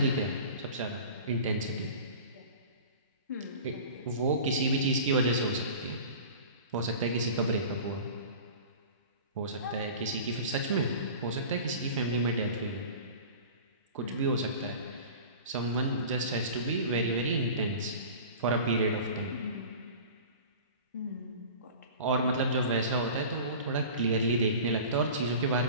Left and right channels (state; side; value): inverted; both; correlation -0.39